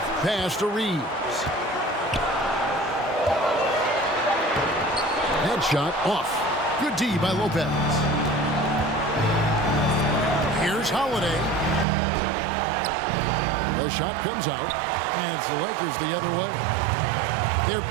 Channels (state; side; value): drops out; left; at 11.9 s